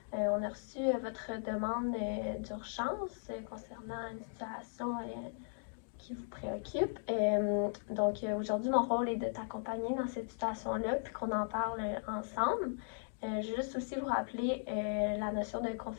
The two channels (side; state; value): right; silent; digital silence